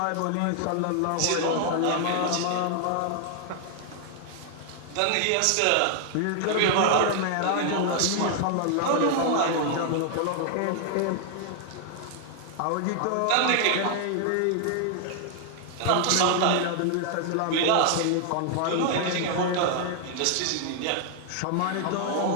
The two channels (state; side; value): different; both; correlation 0.00